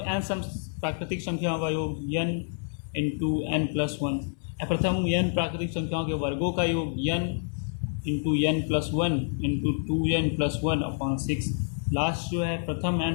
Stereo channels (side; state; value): right; silent; 59 dB below the other